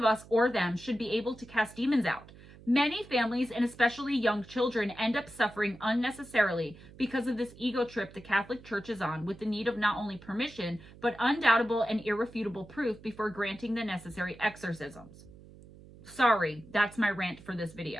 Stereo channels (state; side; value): noise; right; hum, 20 dB below the sound